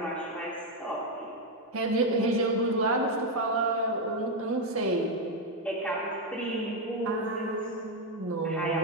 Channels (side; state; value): both; normal; correlation 0.04